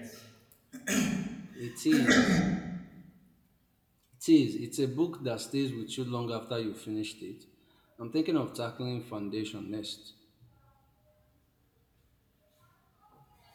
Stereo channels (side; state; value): both; identical; correlation 1.00